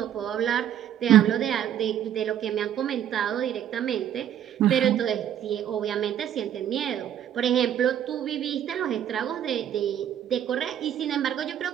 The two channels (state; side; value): quieter; left; 10.3 dB